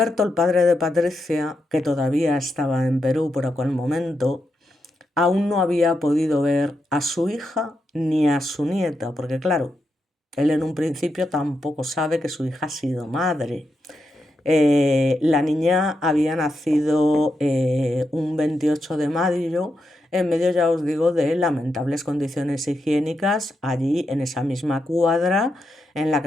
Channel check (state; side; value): normal; both; correlation 0.84